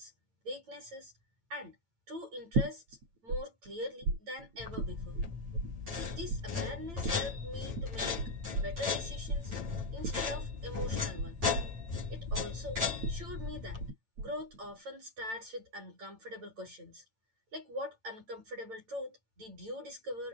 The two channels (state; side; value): late; left; 8.9 ms